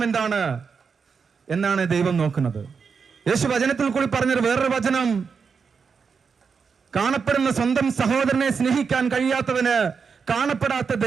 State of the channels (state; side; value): quieter; left; 5.7 dB